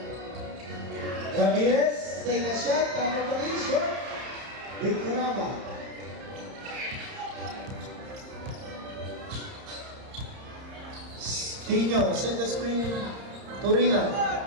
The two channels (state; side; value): late; left; 30 ms